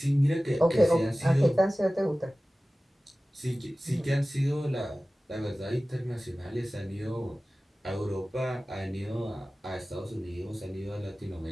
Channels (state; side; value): normal; both; correlation 0.97